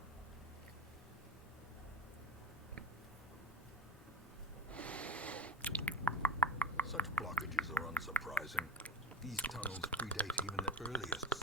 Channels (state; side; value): normal; both; correlation 0.24